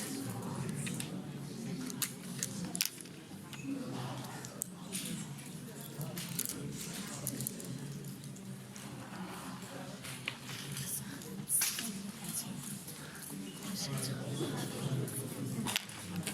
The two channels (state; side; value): identical; both; correlation 1.00